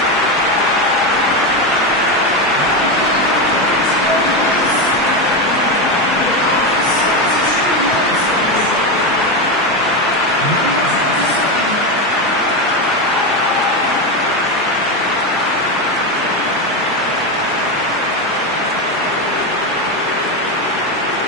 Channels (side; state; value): both; normal; correlation 0.13